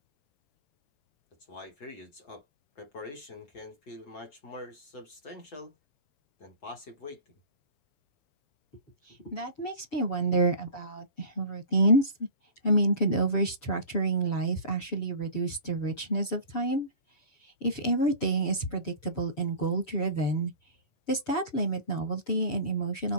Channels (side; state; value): right; late; 6.9 ms